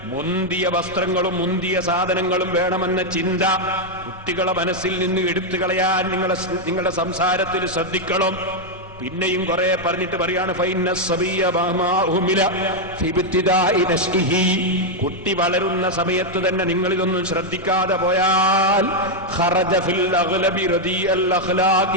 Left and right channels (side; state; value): both; normal; correlation 0.00